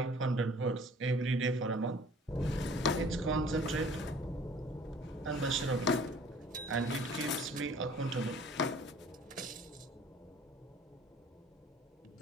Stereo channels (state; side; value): normal; both; correlation 0.51